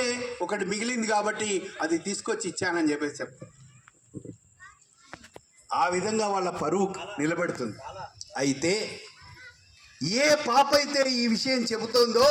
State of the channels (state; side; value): identical; both; correlation 1.00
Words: ఒకటి మిగిలింది కాబట్టి అది తీసుకొచ్చి ఇచ్చానని చెప్పేసి చెప్తాను. ఆ విధంగా వాళ్ళ పరువు నిలబెడుతుంది. అయితే ఏ పాప అయితే ఈ విషయం చెబుతోందో